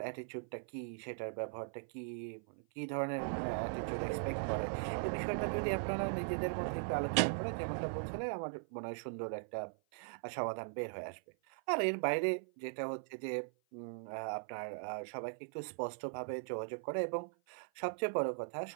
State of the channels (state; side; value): silent; left; 51 dB below the other